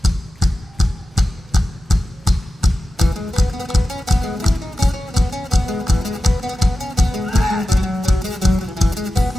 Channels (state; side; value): normal; both; correlation 0.92